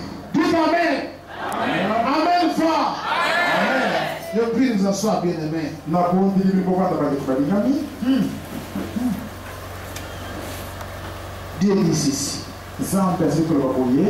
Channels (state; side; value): identical; both; correlation 1.00